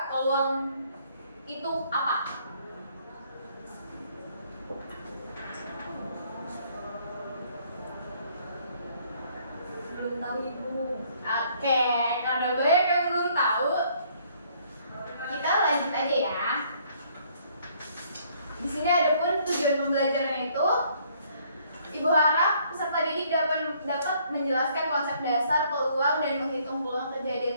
peluang itu apa? Belum tahu Ibu. Oke, karena banyak yang belum tahu, kita lanjut aja ya. Di sini ada pun tujuan pembelajaran itu. Ibu harap peserta didik dapat menjelaskan konsep dasar peluang dan menghitung peluang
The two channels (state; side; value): inverted; both; correlation -0.64